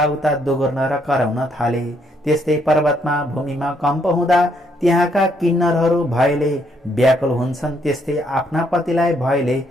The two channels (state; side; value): normal; both; correlation 0.71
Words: दोगुर्न र कराउन थाले। त्यस्तै पर्वतमा भूमिमा कम्प हुँदा त्यहाँका किन्नरहरू भयले व्याकुल हुन्छन्। त्यस्तै आफ्ना पतिलाई भयले